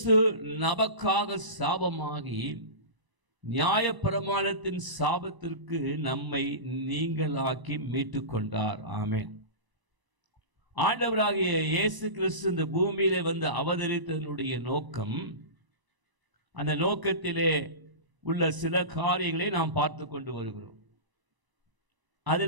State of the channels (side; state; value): left; late; 1.0 ms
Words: நமக்காக சாபமாகி நியாயப்பிரமாணத்தின் சாபத்திற்கு நம்மை நீங்களாக்கி மீட்டு கொண்டார். ஆமென். ஆண்டவராகிய இயேசு கிறிஸ்து இந்த பூமியிலே வந்து அவதரித்ததனுடைய நோக்கம், அந்த நோக்கத்திலே உள்ள சில காரியங்களை நாம் பார்த்து கொண்டு வருகிறோம்.